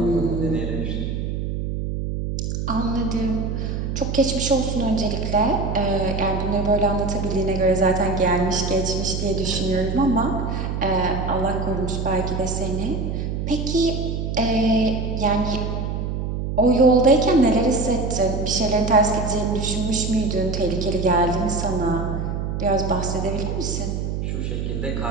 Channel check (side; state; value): right; noise; hum, 3 dB below the sound